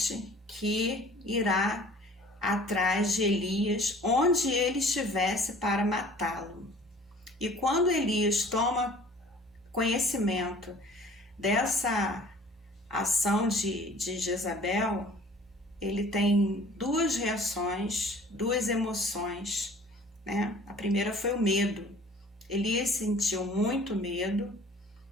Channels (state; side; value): normal; both; correlation 0.50